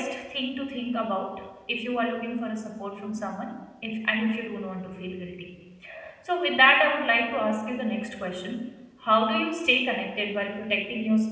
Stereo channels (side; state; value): both; identical; correlation 1.00